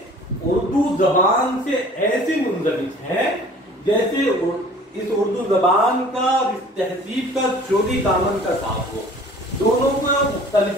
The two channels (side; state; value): both; normal; correlation 0.49